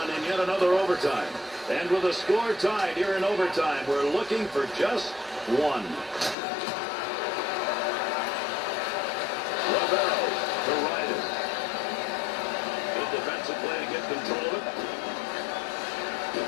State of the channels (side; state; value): right; drops out; at 6.4 s